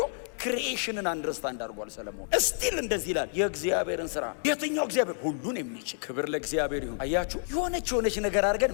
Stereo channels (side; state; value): right; silent; digital silence